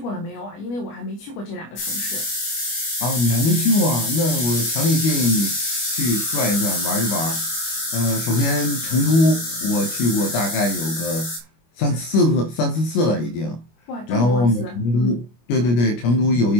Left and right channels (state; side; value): late; right; 25 ms